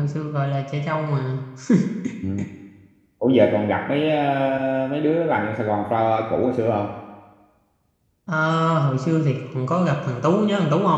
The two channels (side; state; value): both; identical; correlation 1.00